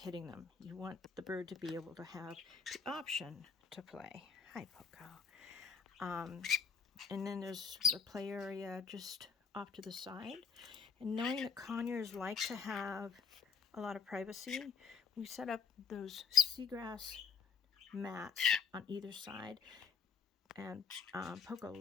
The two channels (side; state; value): right; quieter; 6.3 dB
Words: them. You want the bird to be able to have the option to play. Hi, Poco. And then there's the play area just off to the side. And knowing that conures like to have a lot of privacy, we set up those seagrass mats on either side. And Poco